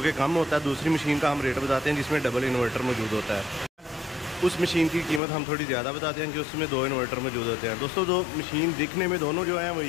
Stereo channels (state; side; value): drops out; right; at 5.2 s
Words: कम होता है, दूसरी मशीन का हम रेट बताते हैं जिसमें डबल इन्वर्टर मौजूद होता है। उस मशीन की कीमत हम थोड़ी ज़्यादा बताते हैं कि उसमें दो इन्वर्टर मौजूद होते हैं। दोस्तों, दो मशीन दिखने में दोनों जो हैं वो